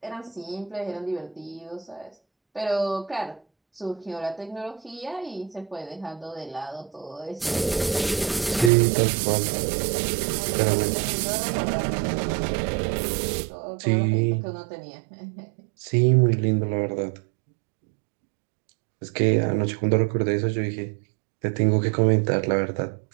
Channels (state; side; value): drops out; left; at 8.7 s